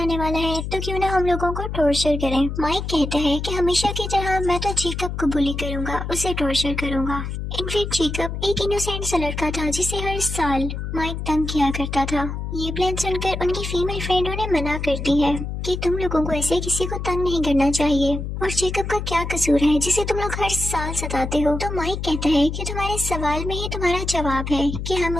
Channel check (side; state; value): left; noise; hum, 5 dB below the sound